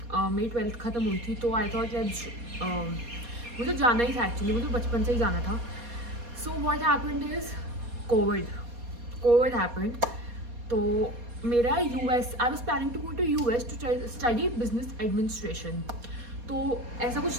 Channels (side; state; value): left; late; 4.2 ms